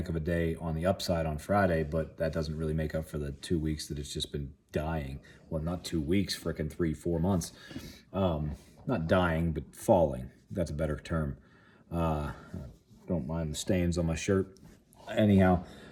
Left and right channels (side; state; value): both; identical; correlation 1.00